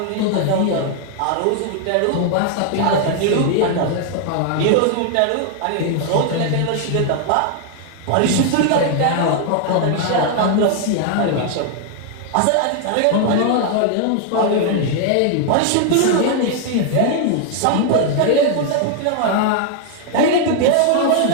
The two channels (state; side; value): different; both; correlation 0.00